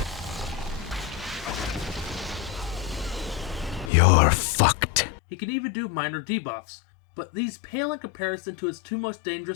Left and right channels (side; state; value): right; drops out; at 3.9 s